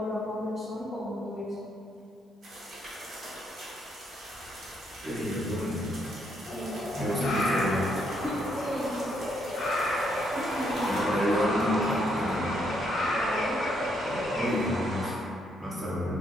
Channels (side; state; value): both; normal; correlation 0.74